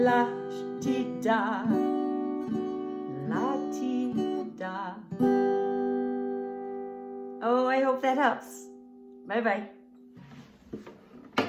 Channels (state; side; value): identical; both; correlation 1.00